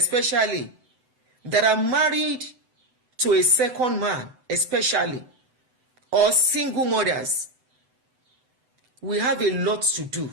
that are married to a second man, especially, or single mothers, we have a lot to do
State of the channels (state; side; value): late; left; 7.9 ms